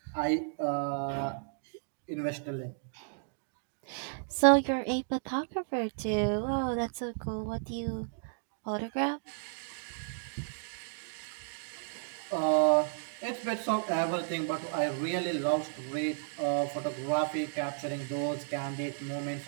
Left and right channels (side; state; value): left; silent; digital silence